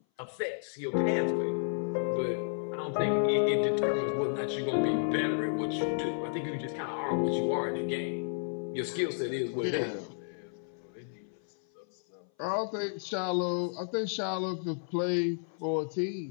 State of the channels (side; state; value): right; silent; 56 dB below the other